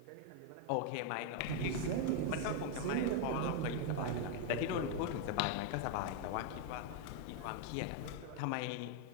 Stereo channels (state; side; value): different; both; correlation 0.00